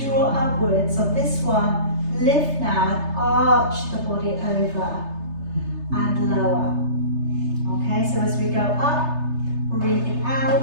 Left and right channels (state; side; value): late; left; 3.3 ms